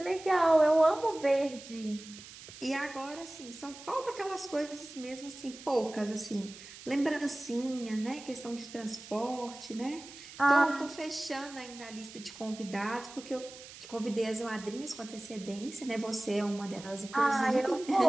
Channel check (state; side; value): noise; right; hiss, 16 dB below the sound